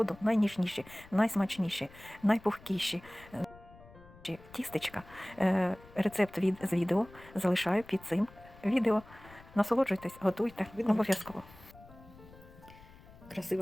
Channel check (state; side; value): noise; left; rumble, 21 dB below the sound